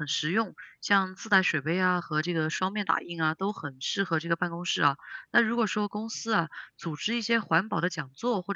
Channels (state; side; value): identical; both; correlation 1.00